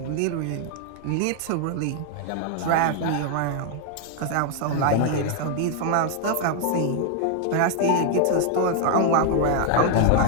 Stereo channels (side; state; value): both; different; correlation 0.00